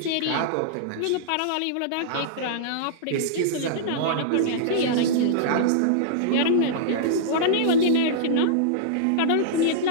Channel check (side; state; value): both; different; correlation -0.02